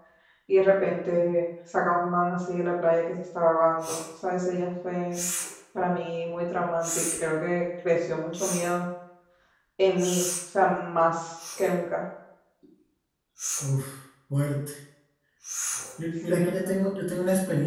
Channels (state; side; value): identical; both; correlation 1.00